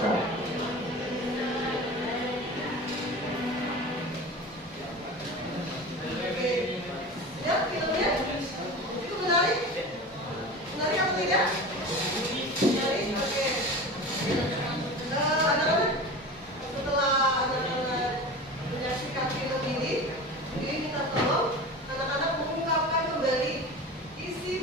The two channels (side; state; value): both; normal; correlation 0.33